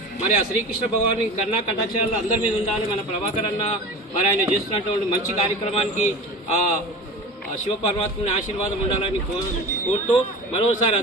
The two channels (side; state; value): both; normal; correlation 0.33